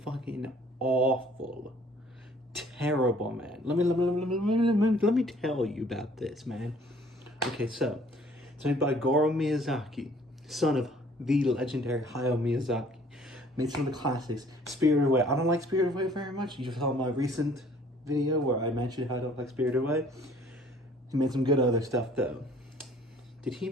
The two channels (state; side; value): normal; both; correlation 0.56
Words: fucking awful. Terrible, man. Let me tell you about this, man. Okay, so it's made by Goro Miyazaki, son of the legendary Hayao Miyazaki. Made some of the classics. Spirited Away. I don't like Spirited Away very much. You saw my recent video where I mentioned how I don't like Spirited Away. He made some good other stuff though. Did he